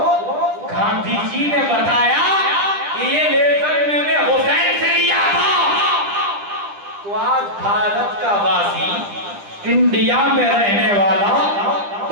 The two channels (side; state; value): left; late; 10 ms